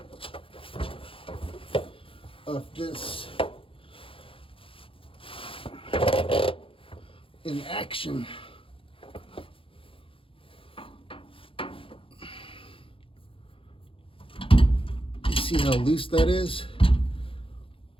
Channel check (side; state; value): right; late; 0.26 ms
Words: of this in action. You see how loose that is?